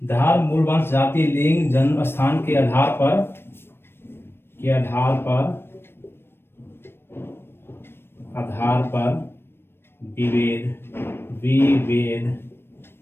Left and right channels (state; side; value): late; right; 0.11 ms